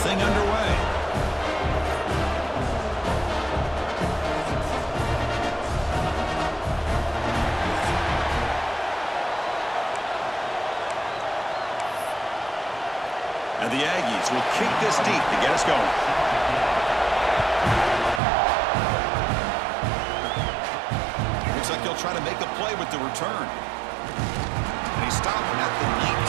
thing underway. And the Aggies will kick this deep to get us going. Looks like he'll try to make a play with the return. And he stopped at the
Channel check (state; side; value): drops out; left; at 18.2 s